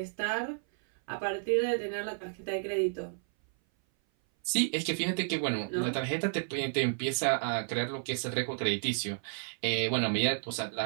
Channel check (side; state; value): left; silent; 57 dB below the other